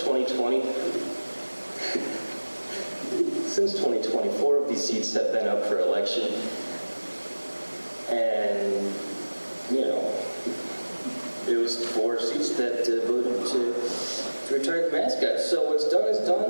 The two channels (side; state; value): both; inverted; correlation -1.00